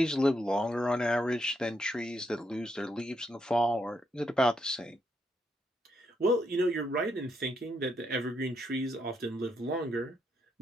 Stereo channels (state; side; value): normal; both; correlation 0.78